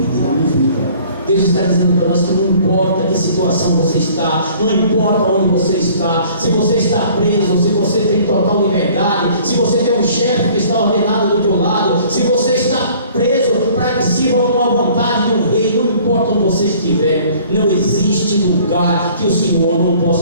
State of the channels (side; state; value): both; inverted; correlation -0.53